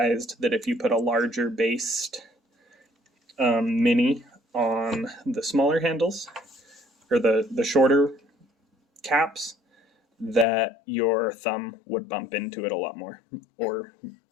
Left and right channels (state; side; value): drops out; right; at 10.5 s